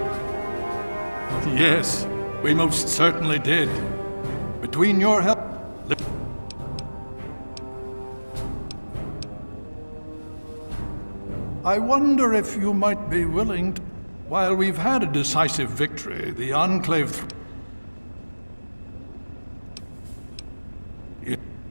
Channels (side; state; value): both; inverted; correlation -1.00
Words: Yes, we most certainly did. Between your help... I wonder if you might be willing to... While we've had a decisive victory, the Enclave...